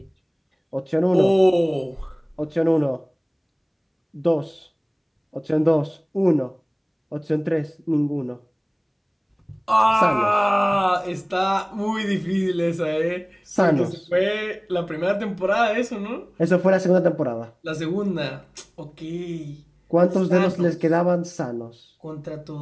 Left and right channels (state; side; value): identical; both; correlation 1.00